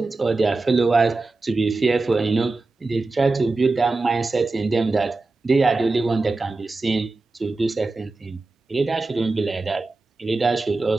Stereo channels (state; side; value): quieter; left; 3.5 dB